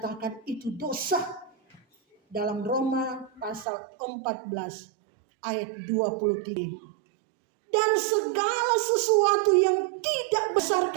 itu dosa. Dalam Roma pasal 14 ayat 23. Dan segala sesuatu yang tidak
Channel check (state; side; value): drops out; left; at 3.7 s